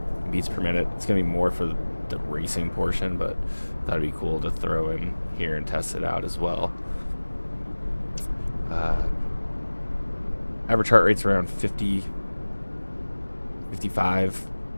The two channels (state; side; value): inverted; both; correlation -1.00